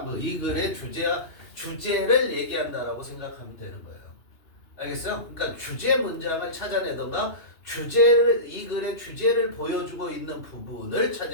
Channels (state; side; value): late; right; 2.8 ms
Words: 이 글의 주제를 얘기한다라고 생각하면 되는 거예요. 알겠어요? 그러니까 주제 문장을 찾아내던가 이 글의 주제를 보여주고 있는 부분을